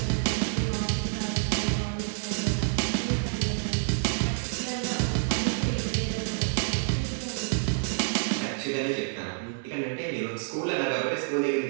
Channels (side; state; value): left; silent; digital silence